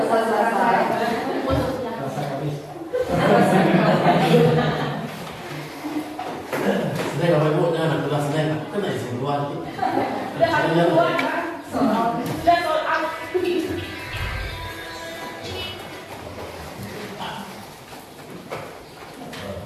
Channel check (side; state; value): both; identical; correlation 1.00